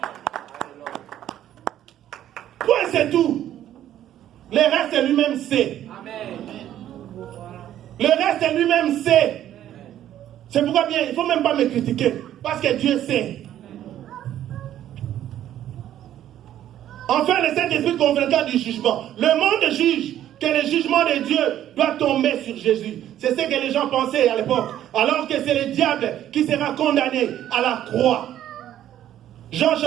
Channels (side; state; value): left; quieter; 11.8 dB